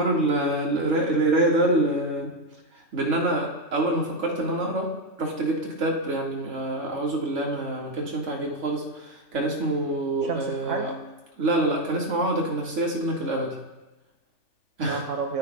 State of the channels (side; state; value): left; late; 3.5 ms